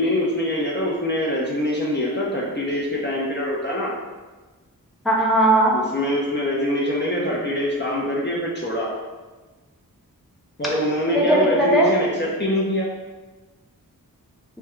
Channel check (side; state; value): both; normal; correlation 0.22